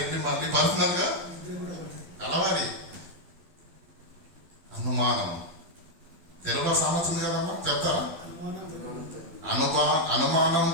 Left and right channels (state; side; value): late; left; 12 ms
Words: వెళ్ళి మళ్ళీ పర్సనల్గా కలవాలి. అనుమానం తెలుగులో సామెత ఉంది కదమ్మా, చెప్తారా? అనుమానం